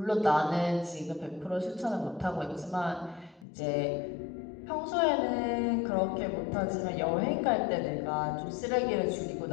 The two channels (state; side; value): drops out; right; at 3.5 s